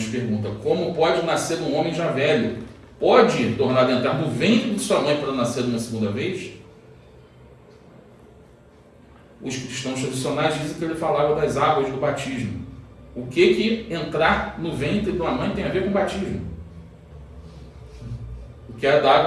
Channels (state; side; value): identical; both; correlation 1.00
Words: pergunta: como pode nascer um homem já velho? Pode tornar a entrar no ventre de sua mãe para nascer uma segunda vez? Os cristãos tradicionais dizem que ele falava das águas do batismo. O que entrar no ventre de uma mãe tem a ver com batismo? O que é da